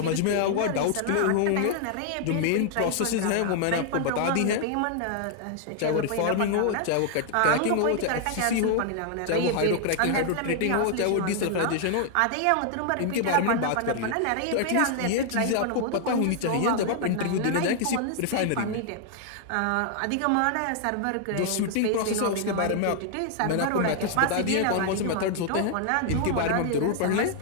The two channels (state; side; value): different; both; correlation 0.00